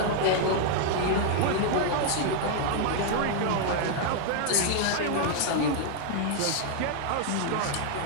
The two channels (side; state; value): both; different; correlation 0.00